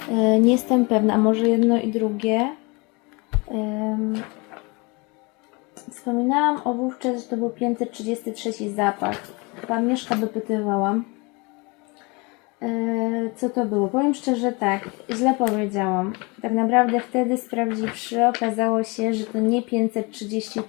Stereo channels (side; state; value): right; quieter; 27.9 dB